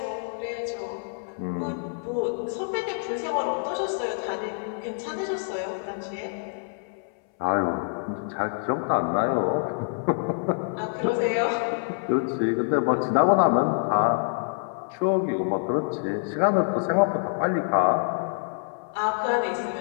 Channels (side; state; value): right; silent; 61 dB below the other